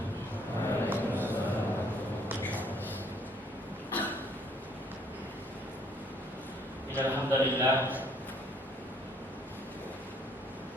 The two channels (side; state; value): both; normal; correlation 0.63